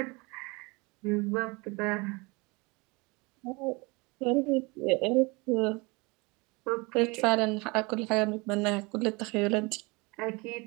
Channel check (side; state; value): left; quieter; 26.7 dB